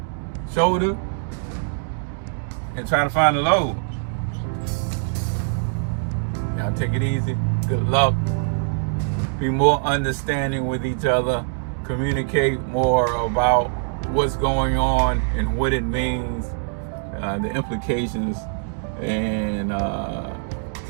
shoulder and try to find a load. Y'all take it easy. Good luck. Be more understanding with each other. Communicate more about what's going on and what it means, the implications, and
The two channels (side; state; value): left; silent; digital silence